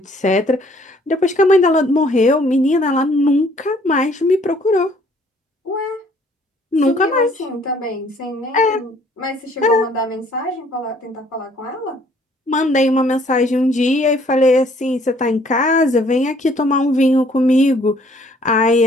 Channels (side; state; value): both; normal; correlation 0.61